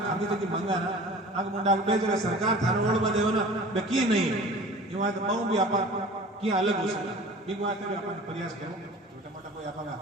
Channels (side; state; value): both; normal; correlation 0.42